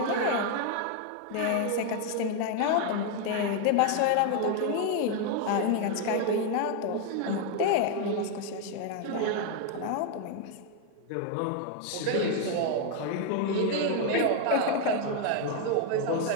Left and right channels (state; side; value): different; both; correlation 0.01